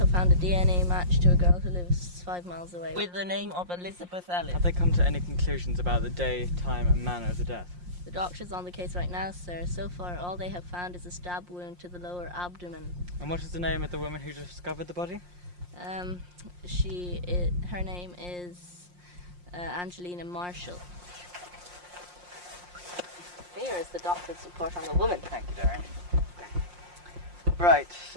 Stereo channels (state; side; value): late; left; 5.6 ms